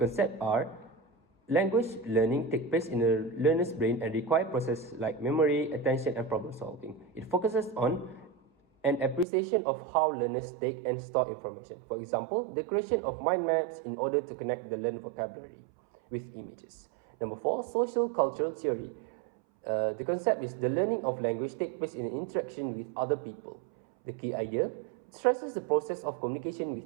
are Language learning takes place in a learner's brain and requires processes like memory, attention, and problem solving. It focuses on an appreciation of how learners take and store information. For example, the creation of mind maps in order to connect the learned vocabulary with images. Number 4, social cultural theory. The concept is the learning of language takes place in interaction with other people. The key idea stresses the process of communication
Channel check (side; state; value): left; drops out; at 9.2 s